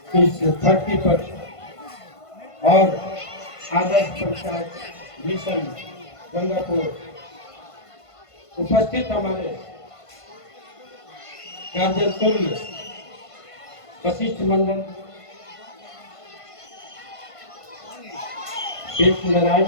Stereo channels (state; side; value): late; right; 1.5 ms